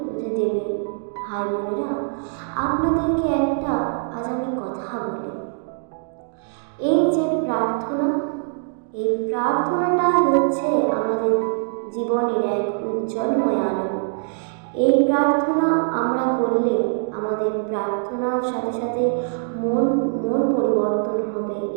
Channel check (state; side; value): silent; left; digital silence